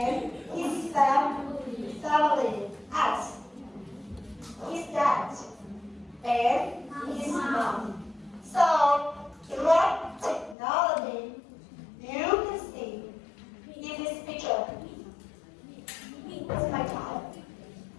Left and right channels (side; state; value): right; drops out; at 10.6 s